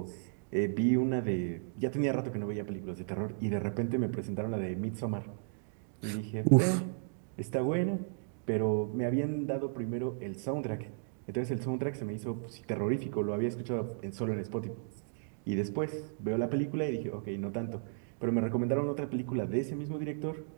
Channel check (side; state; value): left; silent; digital silence